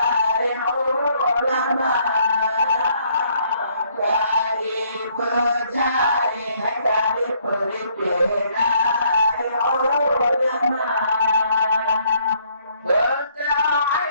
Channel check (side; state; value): both; inverted; correlation -0.66